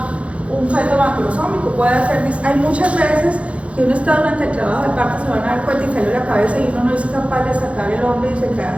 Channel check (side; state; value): left; late; 0.062 ms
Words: un feto macrosómico, puede hacer hay muchas veces que uno está durante el trabajo de parto, se van a dar cuenta y sale la cabeza y uno no es capaz de sacar el hombro y